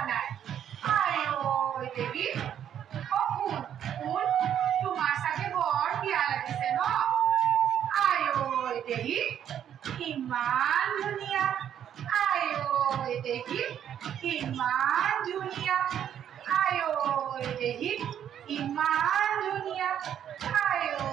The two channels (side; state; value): left; quieter; 9.7 dB